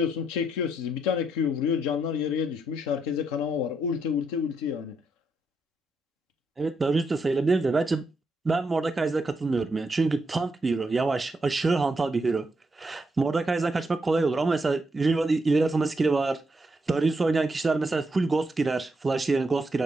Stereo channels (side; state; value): both; normal; correlation 0.80